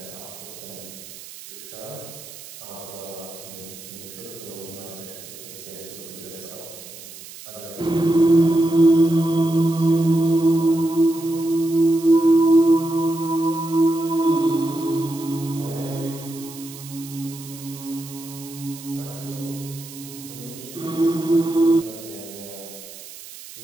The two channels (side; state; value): right; noise; hiss, 15 dB below the sound